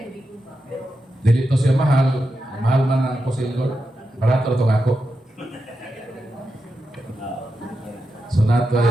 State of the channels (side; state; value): both; normal; correlation 0.88